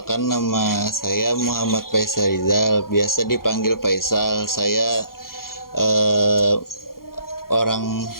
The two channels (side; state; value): right; late; 0.92 ms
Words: nama saya Muhammad Faisal Rizal. Biasa dipanggil Faisal. Saya orang